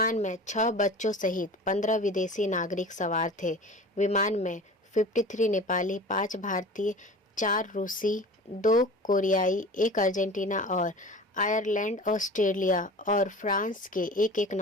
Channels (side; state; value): both; normal; correlation 0.38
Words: में 6 बच्चों सहित 15 विदेशी नागरिक सवार थे। विमान में 53 नेपाली, 5 भारतीय, 4 रूसी, 2 कोरियाई, 1 अर्जेंटीना और आयरलैंड, ऑस्ट्रेलिया और फ्रांस के एक